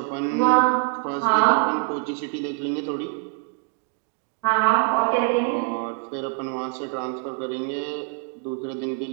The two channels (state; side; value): quieter; left; 31.3 dB